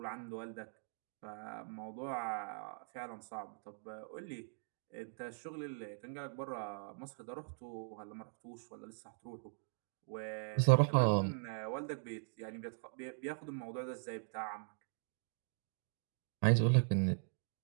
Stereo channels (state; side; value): silent; left; digital silence